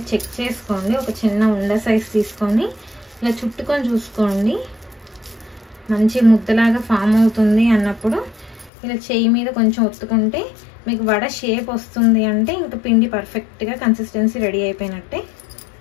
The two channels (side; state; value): right; drops out; at 8.7 s